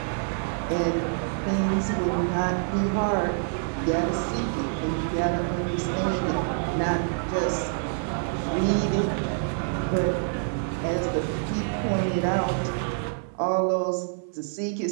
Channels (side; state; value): left; silent; digital silence